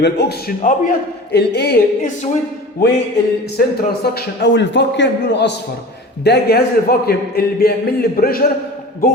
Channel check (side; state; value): both; normal; correlation 0.37